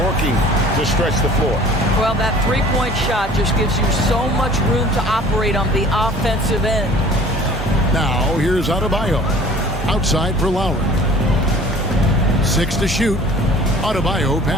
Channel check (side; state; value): both; normal; correlation 0.49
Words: to stretch the floor. Well, that three-point shot just gives you so much room to operate on the offensive end. Now, here's Adebayo. Outside for Lowry. 6 to shoot. Adebayo